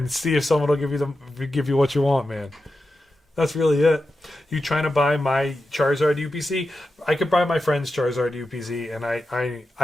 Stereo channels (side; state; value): both; normal; correlation 0.90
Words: see if someone will give you what you want, man. That's really it. You trying to buy my Charizard UPC? I could buy my friend's Charizard UPC, and